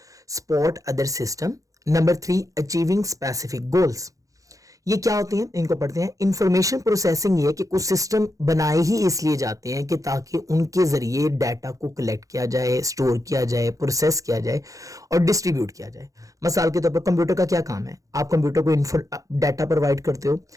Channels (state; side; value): late; left; 0.16 ms